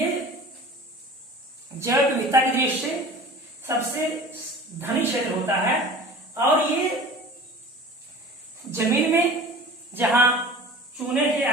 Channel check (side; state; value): both; normal; correlation 0.40